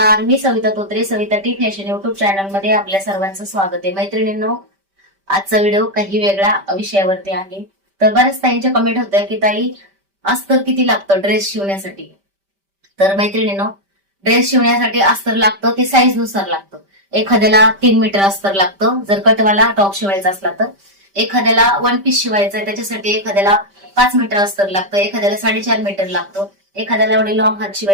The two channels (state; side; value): late; left; 5.1 ms